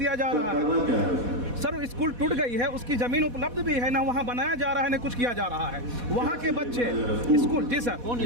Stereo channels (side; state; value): left; late; 4.1 ms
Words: जा रहा है। सर, स्कूल टूट गई है, उसकी जमीन उपलब्ध भी है ना, वहाँ बनाया जा रहा है ना कुछ किया जा रहा है। वहाँ के बच्चे स्कूल। जी सर।